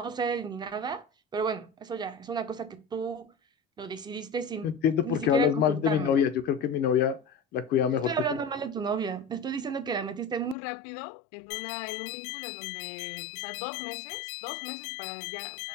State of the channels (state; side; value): drops out; right; at 10.6 s